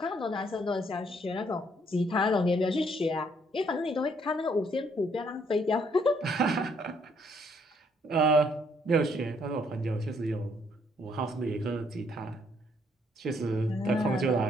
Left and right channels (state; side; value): normal; both; correlation 0.68